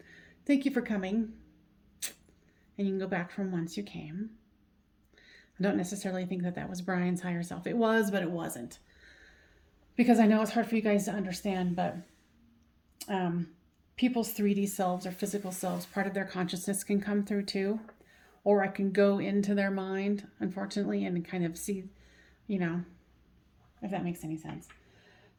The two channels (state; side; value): identical; both; correlation 1.00